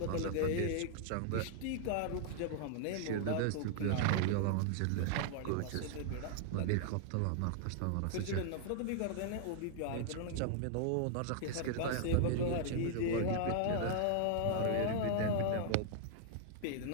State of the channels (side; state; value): both; different; correlation -0.01